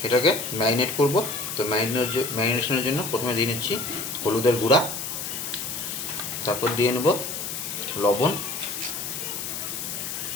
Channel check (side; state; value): left; noise; hiss, 5 dB below the sound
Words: এটাকে ম্যারিনেট করব। তো ম্যারিনেশনের জন্য প্রথমে দিয়ে নিচ্ছি হলুদের গুঁড়া, তারপর দিয়ে নেব লবণ,